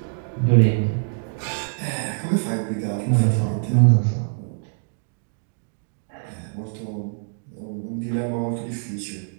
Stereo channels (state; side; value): silent; left; digital silence